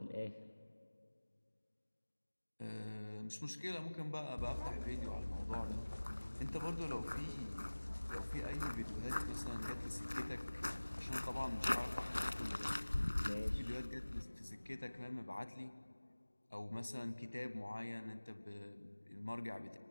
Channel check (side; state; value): both; inverted; correlation -1.00